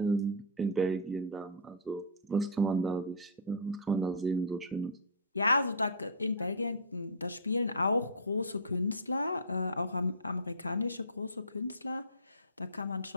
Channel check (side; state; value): both; normal; correlation -0.19